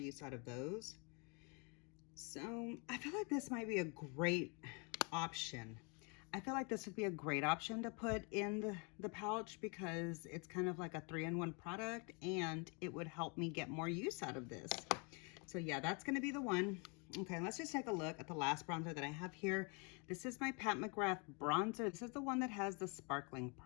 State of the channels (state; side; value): quieter; right; 33.5 dB